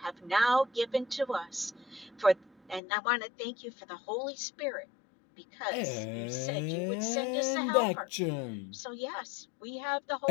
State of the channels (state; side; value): drops out; right; at 2.8 s